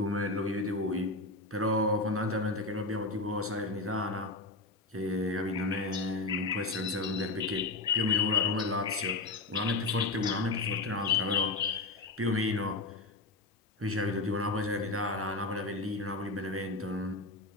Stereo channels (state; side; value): quieter; right; 3.1 dB